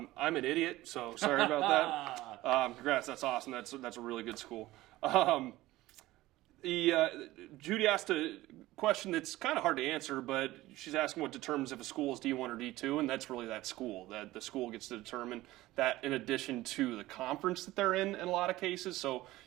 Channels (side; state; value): left; quieter; 17.4 dB